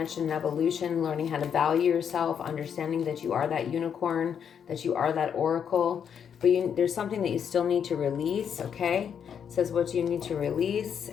and evolution, learning how to value yourself, understanding that you are that unicorn, that you are that oracle. But there's something that you still need to release, okay? It says what you need to release,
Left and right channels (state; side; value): quieter; right; 7.8 dB